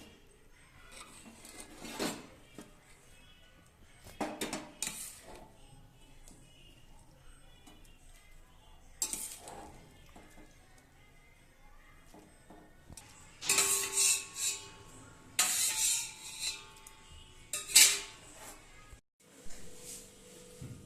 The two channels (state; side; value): identical; both; correlation 1.00